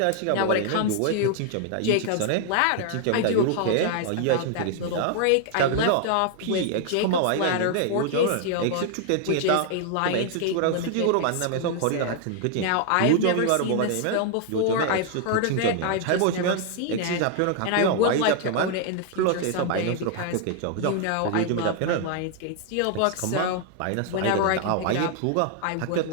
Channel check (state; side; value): different; both; correlation 0.00